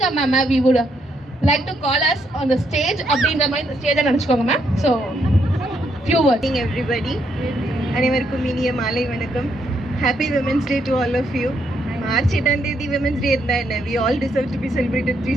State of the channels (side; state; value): both; normal; correlation 0.75